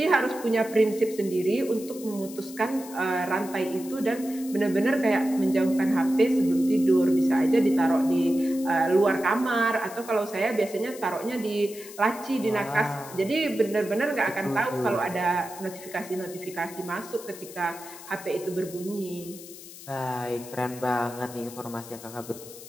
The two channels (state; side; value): noise; left; hiss, 16 dB below the sound